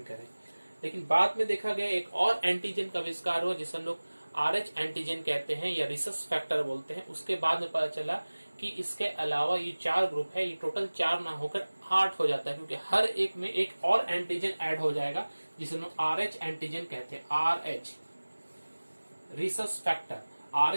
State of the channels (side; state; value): both; inverted; correlation -1.00